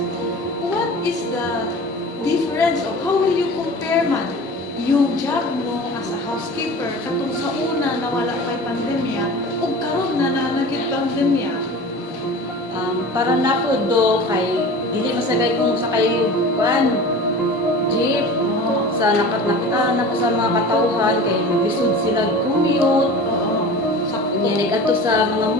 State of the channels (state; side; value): normal; both; correlation 0.37